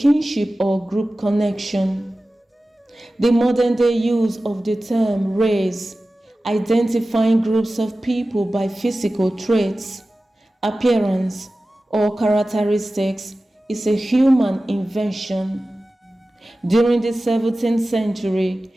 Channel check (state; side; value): normal; both; correlation 0.96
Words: or group connection. The modern-day use of the term race, identifying groups of people by physical traits, appearance, or characteristics, is a human invention. During the 17th